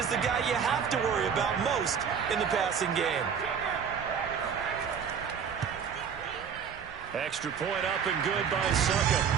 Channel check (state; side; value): quieter; left; 7.1 dB